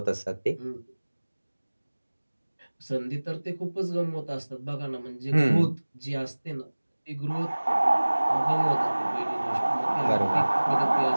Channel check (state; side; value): inverted; both; correlation -1.00